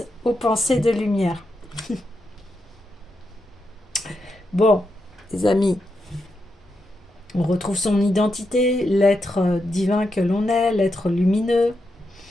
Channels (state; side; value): normal; both; correlation 0.85